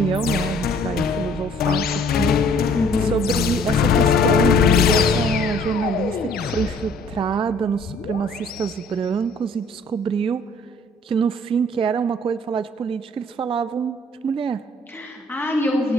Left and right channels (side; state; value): both; normal; correlation 0.57